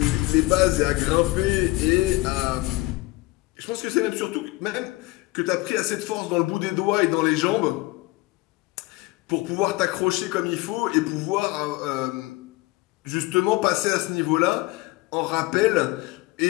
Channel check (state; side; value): quieter; right; 21.0 dB